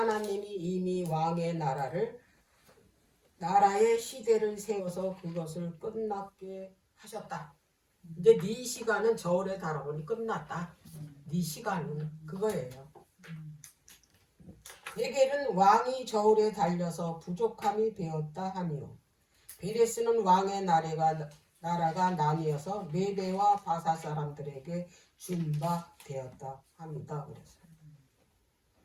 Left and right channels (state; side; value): identical; both; correlation 1.00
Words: 이미 왕의 나라의 시대를 세워서 그것을 끝났게 하셨다. 이제 네 시간은 저울에 달아보니 끝났다. 네 시간은 그거예요. 베겔은 왕이 저울에 달려서 부족함이 되었다 하니요. 베레스는 왕의 나라가 나뉘어서 메대와 바사 사람들에게 준 바 되었다 합니다. 그래서